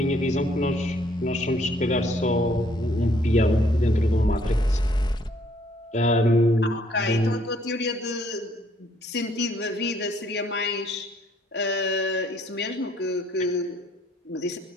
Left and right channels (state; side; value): normal; both; correlation 0.65